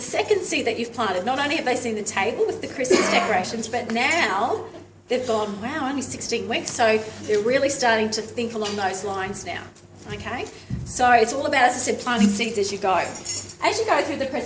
second seed that you've planted. Not only have they seen the table with the Christmas decorations, but now they've gone, wow, only 16 weeks. So they're really starting to think along those lines now, okay? So it's all about, as I said, planting seeds as you go. As you go through the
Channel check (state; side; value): identical; both; correlation 1.00